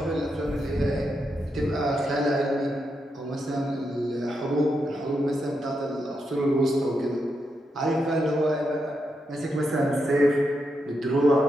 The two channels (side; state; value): both; normal; correlation 0.84